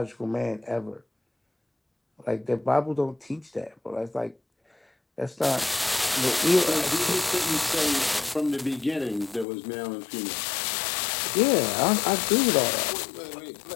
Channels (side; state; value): right; drops out; at 9.5 s